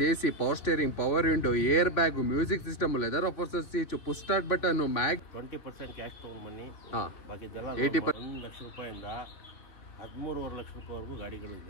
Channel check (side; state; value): right; late; 3.6 ms